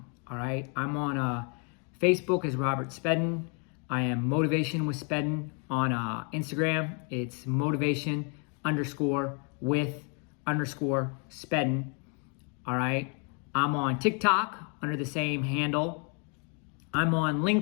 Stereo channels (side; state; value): right; quieter; 37.9 dB